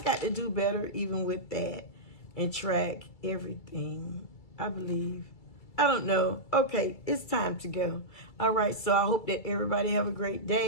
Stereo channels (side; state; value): right; late; 2.3 ms